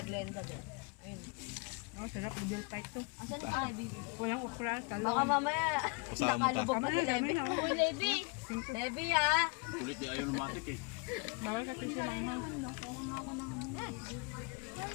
Glenda din. Ayun. Oh, sarap. Bill pike to. Asan si Levi? Walang okra, talong. Baka mamaya Kasama nakalubog pa si Levi. Dami, dami. Uy, Levi! Levi ah! Kulit di ayaw lumatik eh. Bawal ka tissue lang ha.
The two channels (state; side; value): quieter; right; 29.8 dB